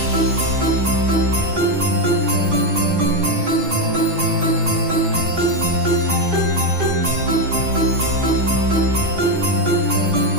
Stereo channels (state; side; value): late; left; 6.2 ms